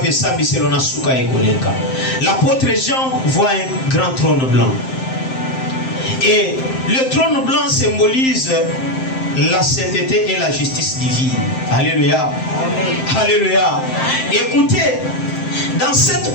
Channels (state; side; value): late; right; 7.7 ms